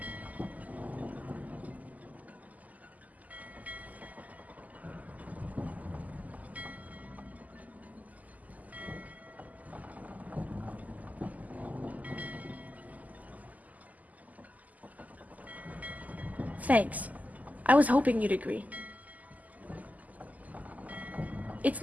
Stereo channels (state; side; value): late; left; 0.078 ms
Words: Thanks. I was hoping you'd agree. It's